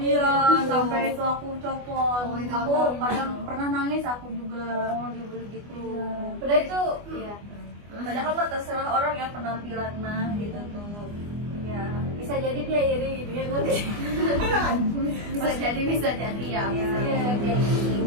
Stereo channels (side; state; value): left; late; 24 ms